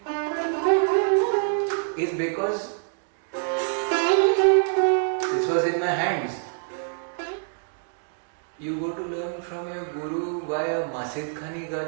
is because this was in my hands. You go to learn from your guru via Masid Khani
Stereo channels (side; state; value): left; silent; digital silence